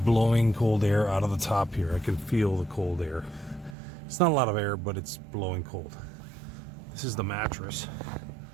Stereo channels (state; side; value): drops out; left; at 3.8 s